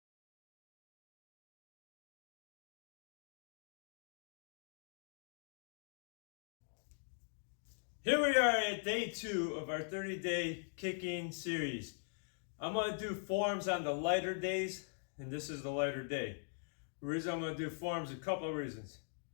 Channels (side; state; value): right; silent; digital silence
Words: Here we are at day 2 of our 30-day kicking series. I'm going to do forms on the lighter days, and this is the lighter day. The reason I'm going to do forms, a couple of reasons.